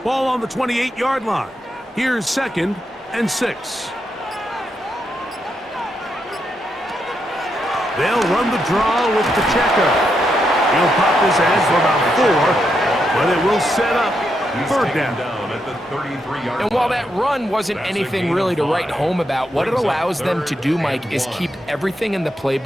Ball on the 28-yard line. Here's 2nd and 6. They'll run the draw with Pacheco. He'll pop his head for about 4, but it will set up 3rd down. At the 33-yard And while that run wasn't anything really to write home about, what it allows them to do, Mike, is keep everything in the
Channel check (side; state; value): both; normal; correlation 0.82